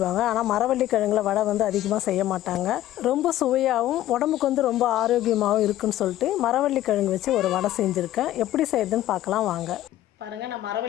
ஆனால் மரவள்ளி கிழங்குல வடை அதிகமாக செய்ய மாட்டாங்க. ரொம்ப சுவையாகவும் உடம்புக்கு ரொம்ப ஆரோக்கியமாகவும் இருக்குன்னு சொல்லிட்டு மரவள்ளி கிழங்கு வச்சு ஒரு வடை செஞ்சுருக்கேன். எப்படி செய்யுதுன்னு பார்க்கலாம் வாங்க. பாருங்கள், நான்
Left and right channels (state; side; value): quieter; right; 13.8 dB